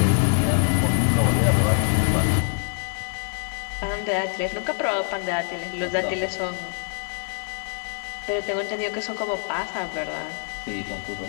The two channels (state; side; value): silent; right; 57 dB below the other